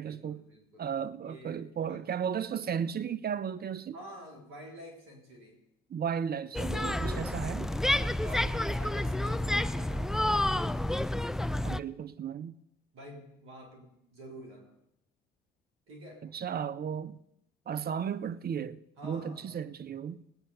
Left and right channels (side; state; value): both; normal; correlation 0.72